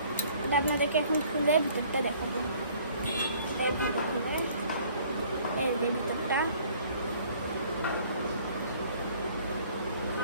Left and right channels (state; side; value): inverted; both; correlation -0.56